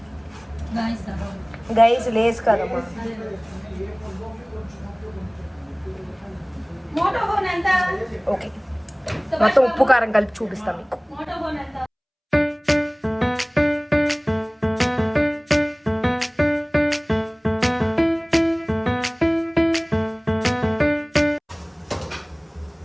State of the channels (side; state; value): both; identical; correlation 1.00